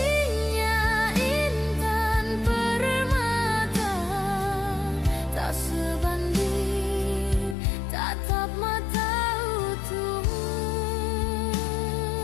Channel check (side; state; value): right; drops out; at 7.6 s